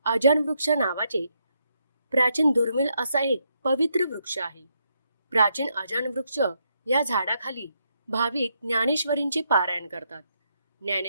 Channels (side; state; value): both; inverted; correlation -0.78